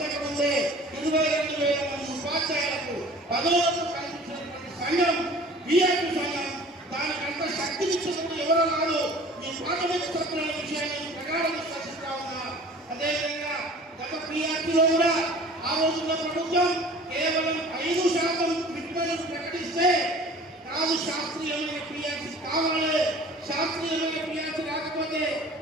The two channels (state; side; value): normal; both; correlation 0.46